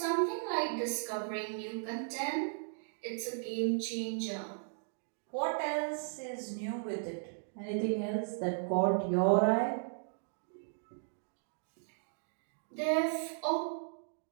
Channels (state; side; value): silent; left; digital silence